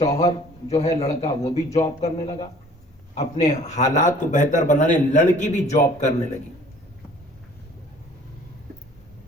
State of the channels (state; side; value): normal; both; correlation 0.52